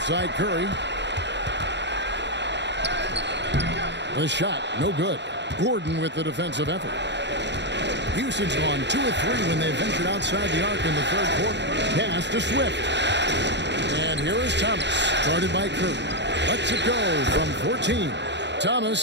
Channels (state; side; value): late; left; 0.51 ms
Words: side, Curry. The shot, no good. Gordon with the defensive effort. Houston's gone 2 of 3 when they ventured outside the arc in the third quarter. Pass to Swift. And here is Thomas, guarded by Curry. Lets it go from 14.